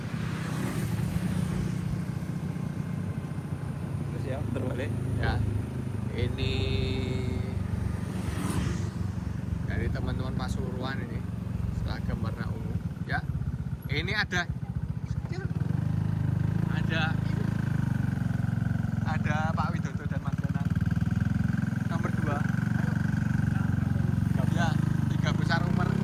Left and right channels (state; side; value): identical; both; correlation 1.00